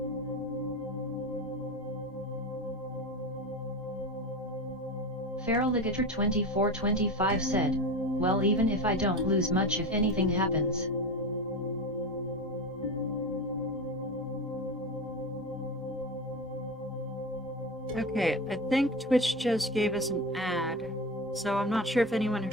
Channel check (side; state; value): both; normal; correlation 0.24